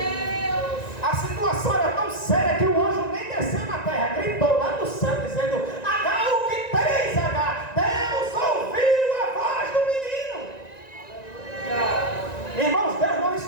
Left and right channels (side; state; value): right; late; 1.9 ms